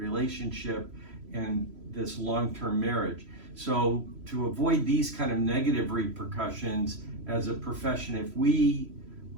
and this long-term marriage. So to avoid these kind of negative repercussions as a profession, if we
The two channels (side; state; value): left; late; 3.0 ms